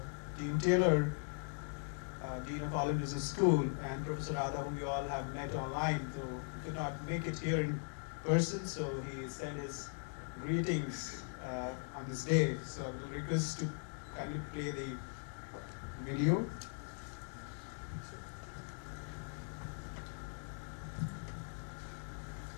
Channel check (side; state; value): right; silent; 51 dB below the other